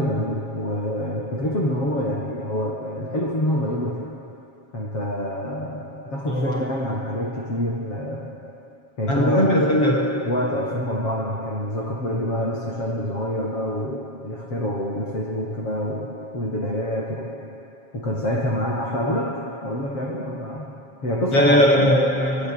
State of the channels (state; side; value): late; right; 7.4 ms